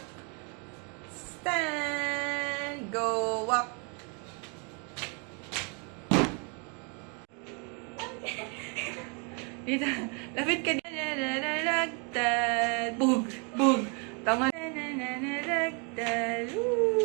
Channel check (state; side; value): quieter; left; 35.6 dB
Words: stand, go, walk, dito, lapit ka, bug, bug, tama,